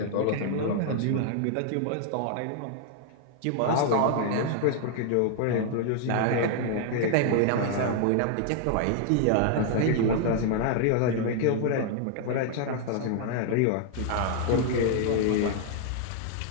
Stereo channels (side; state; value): both; different; correlation 0.00